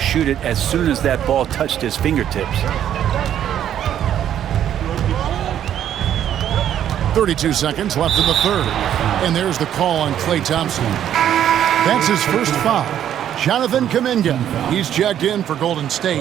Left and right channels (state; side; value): quieter; left; 10.4 dB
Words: it as soon as that ball touched his fingertips. 32 seconds left in the third. And there's the call on Klay Thompson. That's his first foul. Jonathan Kuminga, he's checked in for Golden